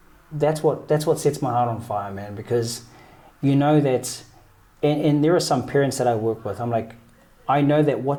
that's what sets my heart on fire, man. Because you know that, and there are some parents that I work with, I'm like, I know that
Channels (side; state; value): both; identical; correlation 1.00